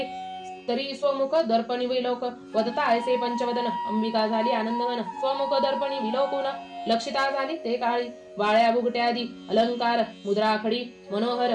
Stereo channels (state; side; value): identical; both; correlation 1.00